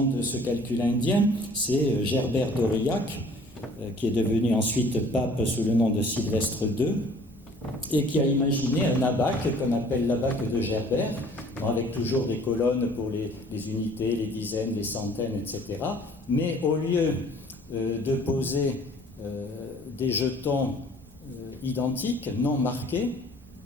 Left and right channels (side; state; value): both; normal; correlation 0.53